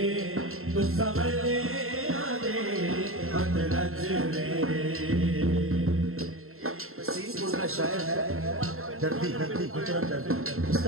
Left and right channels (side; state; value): left; late; 0.62 ms